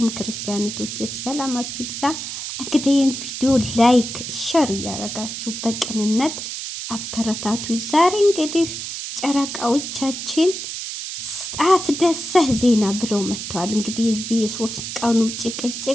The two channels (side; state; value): right; noise; hiss, 6 dB below the sound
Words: ክርስቲያኖቶቼ ሰላማችሁ ይብዛ። እንግዲህ ይህን ቪዲዮ ላይክ ሸር እያደረጋችሁ በቅንነት አበረታቱ። ዛሬ እንግዲህ ጨረቃዎቻችን አስደሳች ዜና ብለው መጥተዋል። እንግዲህ የዚህ የሶስት ቀኑ